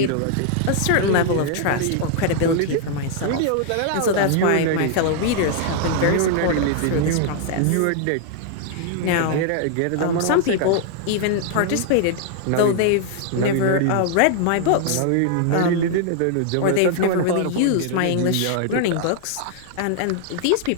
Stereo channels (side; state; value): both; different; correlation 0.00